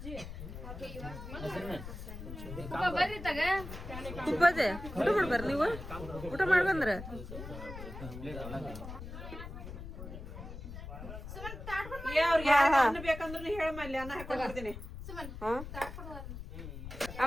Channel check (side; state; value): left; noise; rumble, 10 dB below the sound